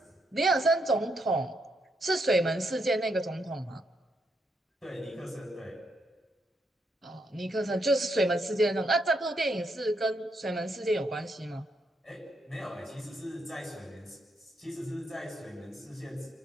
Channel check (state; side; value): normal; both; correlation 0.79